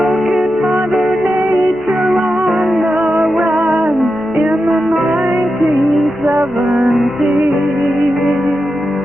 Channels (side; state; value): both; normal; correlation 0.89